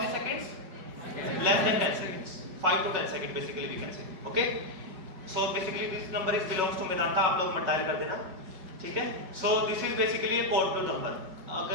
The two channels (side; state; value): left; late; 5.3 ms